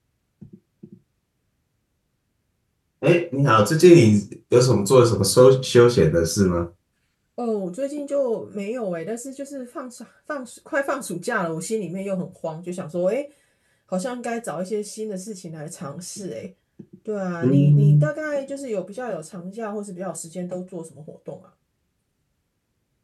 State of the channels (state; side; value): identical; both; correlation 1.00